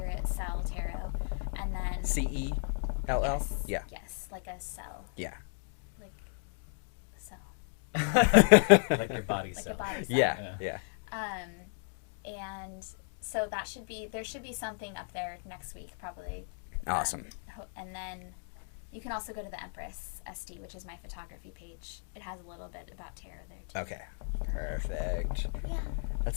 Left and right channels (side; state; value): right; silent; 55 dB below the other